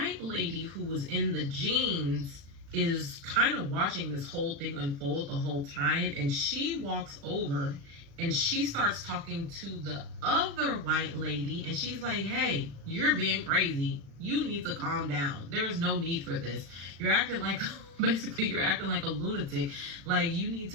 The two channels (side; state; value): left; late; 36 ms